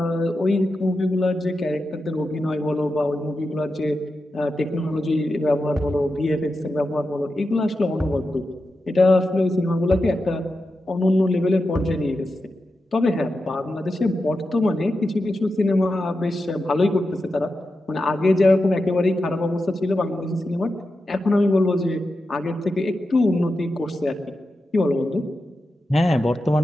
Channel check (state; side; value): normal; both; correlation 0.90